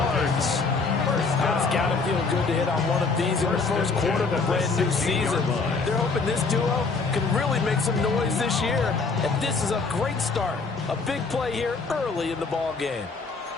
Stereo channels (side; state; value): right; quieter; 4.3 dB